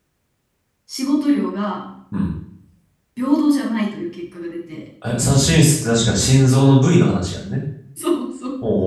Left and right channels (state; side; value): identical; both; correlation 1.00